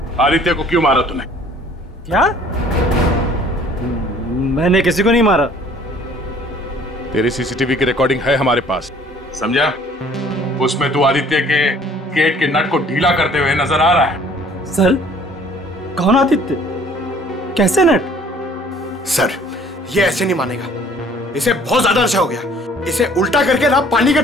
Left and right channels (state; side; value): normal; both; correlation 0.55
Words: आदित्य को क्यों मारा तूने? क्या? मैंने किसी को नहीं मारा। तेरी सीसीटीवी की रिकॉर्डिंग है हमारे पास, समझा? उसमें तू आदित्य के गेट के नट को ढीला करते हुए नजर आ रहा है। सर, कौन आदित्य? कैसे नट? सर, ये ऐसे नहीं मानेगा। इसे बहुत ज्यादा नशा हो गया। इसे उल्टा करके ना पानी के